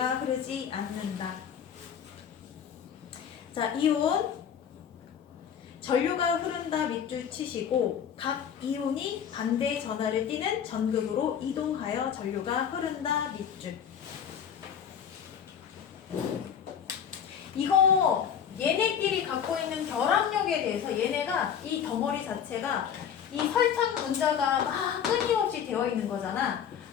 흐르지 않는다. 자, 이온 전류가 흐른다 밑줄 치시고 각 이온이 반대 전하를 띠는 전극으로 이동하여 전류가 흐른다 밑줄. 이거 얘네끼리 갖고 있는 결합력에 대해서 얘네가 이 덩어리 자체가 이 설탕 분자가 막 끊임없이 되어 있는 거잖아.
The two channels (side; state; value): right; quieter; 8.2 dB